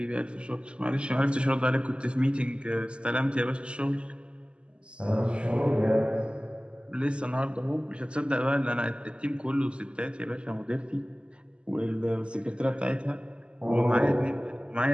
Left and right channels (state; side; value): late; left; 0.053 ms